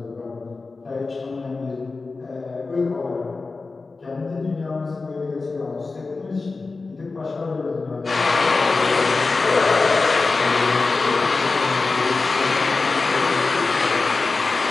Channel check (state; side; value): quieter; right; 3.9 dB